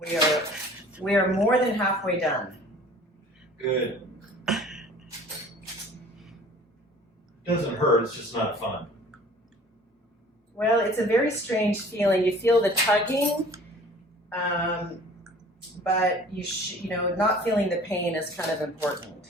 We are more than halfway done. Good. Doesn't hurt, it's just not fun. Well, it's a very strange feeling. You feel the tugging, but you know, not feeling the pain is kind of important.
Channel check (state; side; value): normal; both; correlation 0.48